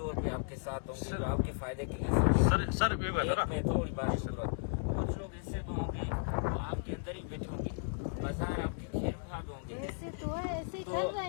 पे आपके साथ होंगे, जो आपके फायदे के लिए सर मैं थोड़ी बात शुरू, कुछ लोग ऐसे भी होंगे वो आपके अंदर ही बैठे होंगे, बाजार आपके खैर ख्वाह भी होंगे, तो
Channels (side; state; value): right; silent; digital silence